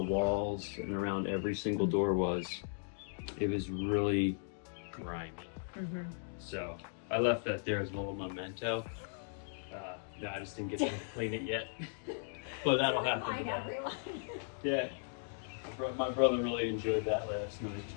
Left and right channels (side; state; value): right; silent; digital silence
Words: walls and around every single door was. It was really grimy. So I left that there as a little memento. No, I just didn't get to clean it yet. But that'll happen Remind today. everyone. Yeah. My brother really enjoyed that last night.